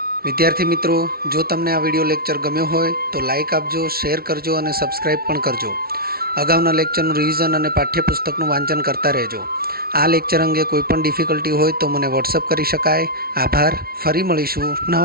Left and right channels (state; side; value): late; left; 0.44 ms